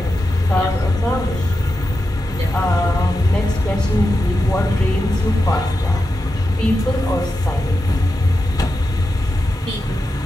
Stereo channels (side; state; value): both; normal; correlation 0.89